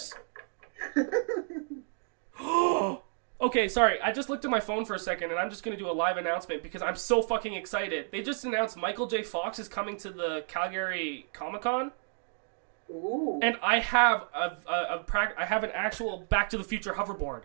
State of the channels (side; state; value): left; silent; 57 dB below the other